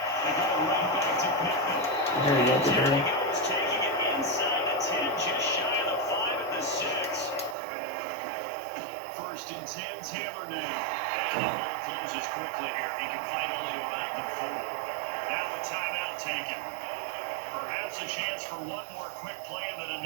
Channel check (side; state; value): left; drops out; at 7.6 s